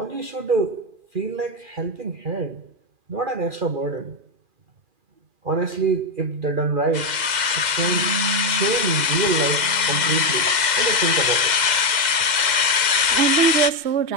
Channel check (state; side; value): late; left; 2.1 ms